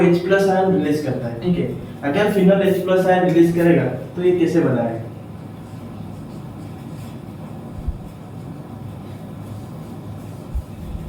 H+ आयन रिलीज करता है। ठीक है, अगर फिनोल H+ आयन रिलीज करेगा तो ये कैसे बना है?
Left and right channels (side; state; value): both; identical; correlation 1.00